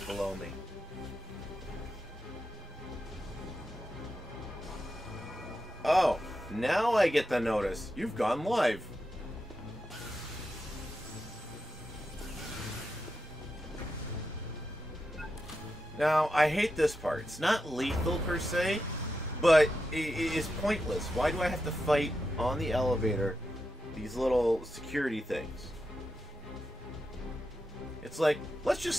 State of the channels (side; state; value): both; normal; correlation 0.89